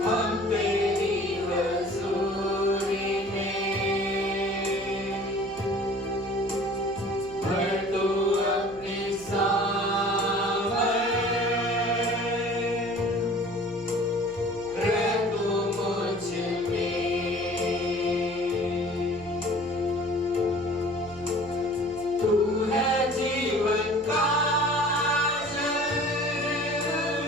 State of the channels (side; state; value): right; noise; hum, 21 dB below the sound